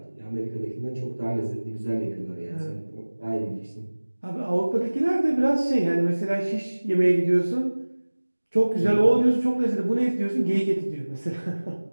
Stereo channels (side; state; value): both; inverted; correlation -1.00